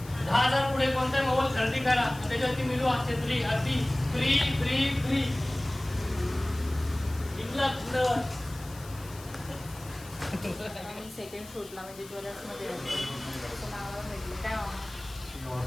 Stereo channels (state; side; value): noise; left; hiss, 19 dB below the sound